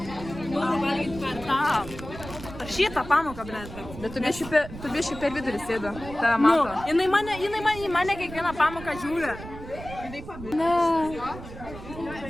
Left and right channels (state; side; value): noise; right; rumble, 13 dB below the sound